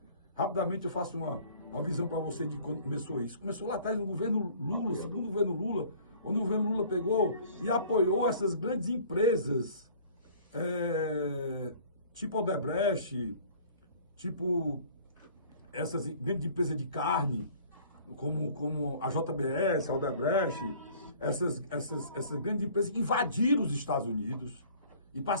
Rapidamente eu faço uma visão para você de quando começou isso. Começou lá atrás no governo Lula, segundo governo Lula, onde o governo Lula pegou e apoiou essas grandes empresas, tipo Odebrecht, tipo essas grandes empresas de carne, como a JBS, a Odebrecht, essas grandes empresas invadiram os Estados Unidos e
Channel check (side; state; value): both; inverted; correlation -0.51